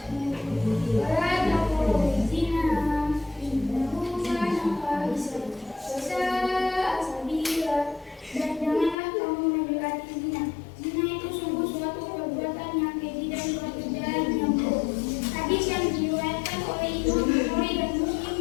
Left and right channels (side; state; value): right; drops out; at 9.0 s